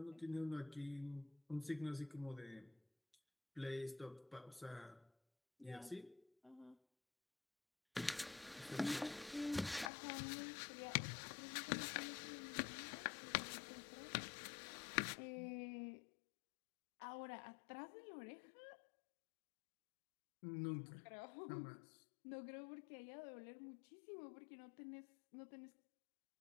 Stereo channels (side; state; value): right; drops out; at 9.9 s